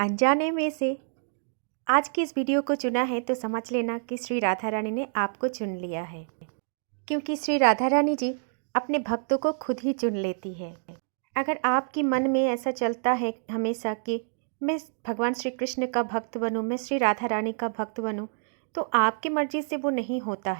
में से आज की इस वीडियो को चुना है तो समझ लेना कि श्री राधा रानी ने आपको चुन लिया है, क्योंकि श्री राधा रानी जी अपने भक्तों को खुद ही चुन लेती है। अगर आपके मन में ऐसा चलता है हमेशा कि मैं भगवान श्री कृष्ण का भक्त बनूं, मैं श्री राधा रानी का भक्त बनूं, तो आपकी मर्जी से वो नहीं होता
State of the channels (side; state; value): left; silent; digital silence